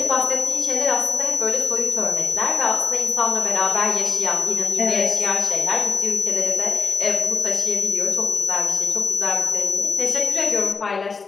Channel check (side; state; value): right; quieter; 4.8 dB